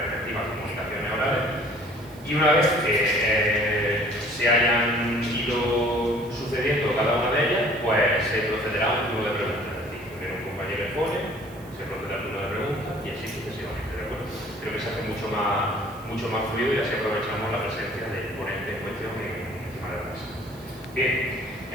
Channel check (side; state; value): right; noise; hiss, 24 dB below the sound